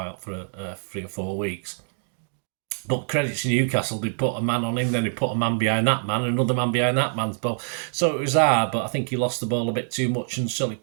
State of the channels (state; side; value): silent; left; digital silence